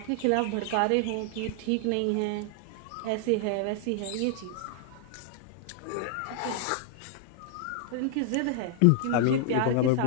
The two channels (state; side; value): different; both; correlation 0.00